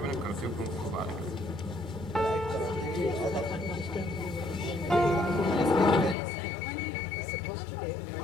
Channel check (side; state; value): right; drops out; at 6.2 s